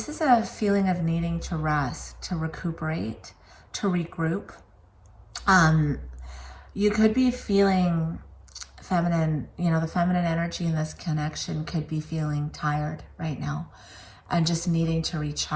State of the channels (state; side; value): identical; both; correlation 1.00